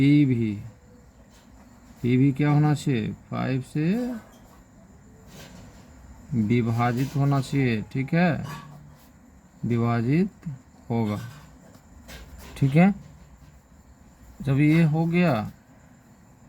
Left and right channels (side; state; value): both; identical; correlation 1.00